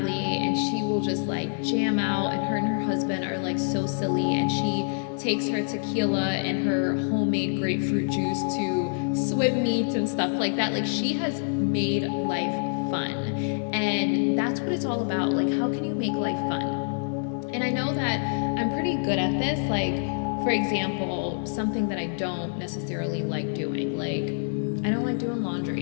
and she will just like jam out, and her husband are like so silly, and she takes her tequila and her homemade grapefruit juice to swim meets and stuff like that. Like, she has made life fun, and that's what it's all about. Like, how can you make life fun? And I know that I'm pretty good at this. Like, for example, something that I don't necessarily like doing, like, I don't like doing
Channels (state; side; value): silent; right; digital silence